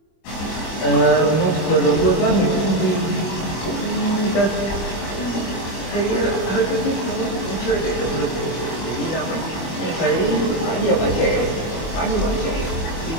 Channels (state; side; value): late; right; 25 ms